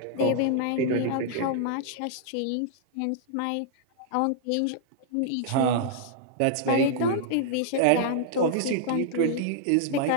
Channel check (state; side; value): different; both; correlation -0.01